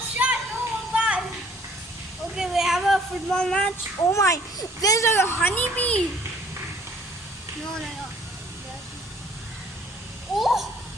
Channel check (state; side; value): normal; both; correlation 0.56